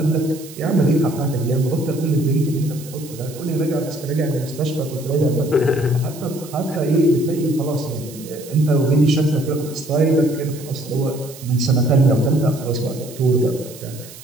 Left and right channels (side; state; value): right; noise; hiss, 17 dB below the sound